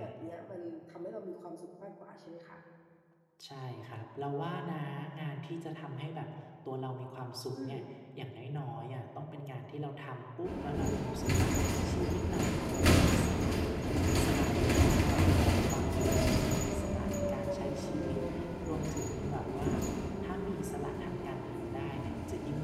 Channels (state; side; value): identical; both; correlation 1.00